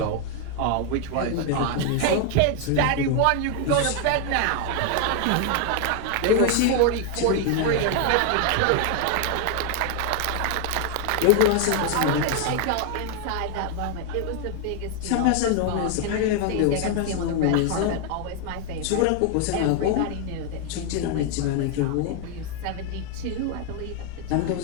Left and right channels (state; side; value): different; both; correlation 0.00